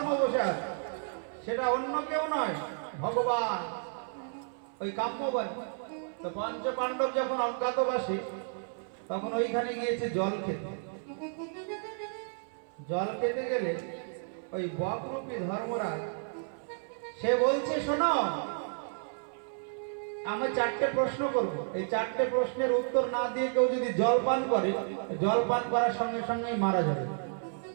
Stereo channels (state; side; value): silent; left; 57 dB below the other